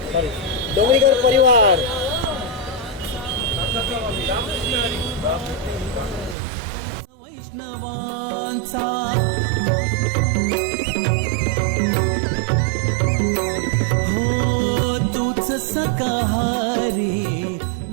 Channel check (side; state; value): left; drops out; at 6.4 s